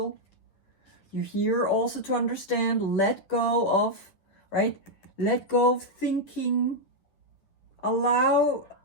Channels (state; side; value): late; right; 10 ms